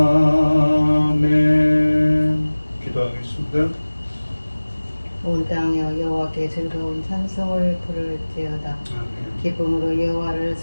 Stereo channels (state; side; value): inverted; both; correlation -1.00